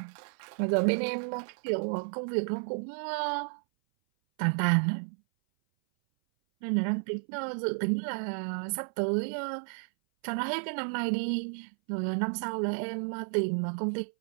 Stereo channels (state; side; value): silent; left; 57 dB below the other